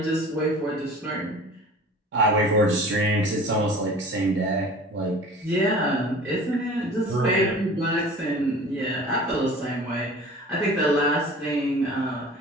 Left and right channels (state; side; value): normal; both; correlation 0.43